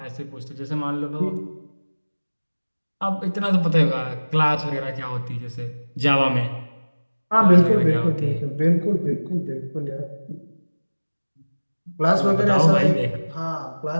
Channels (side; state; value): both; inverted; correlation -1.00